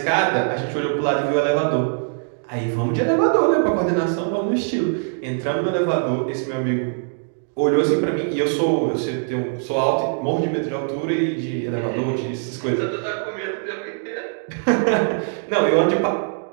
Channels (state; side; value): silent; left; digital silence